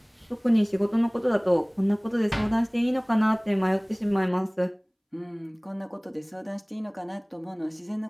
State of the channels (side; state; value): both; identical; correlation 1.00